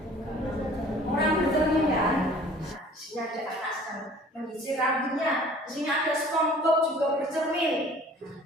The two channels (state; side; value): normal; both; correlation 0.50